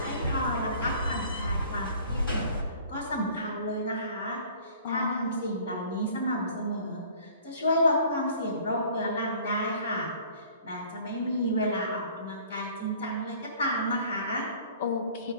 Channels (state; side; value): inverted; both; correlation -0.51